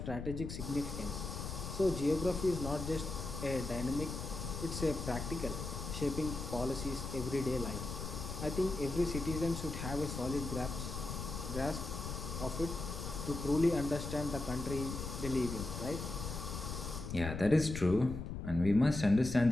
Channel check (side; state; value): left; noise; rumble, 6 dB below the sound